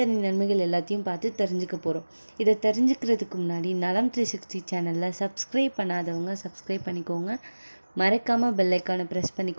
நன்மைகள் எல்லாத்தையும் பார்த்து தெரிஞ்சுக்க போகிறோம். இதை தெரிஞ்சுக்கிறதுக்கு முன்னாடி நலம் 360 சேனலில் சப்ஸ்கிரைப் பண்ணாதவங்க சப்ஸ்கிரைப் பண்ணிக்கோங்க. மறக்காமல் பெல் ஐக்கானை ப்ரெஸ்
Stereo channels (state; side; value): inverted; both; correlation -1.00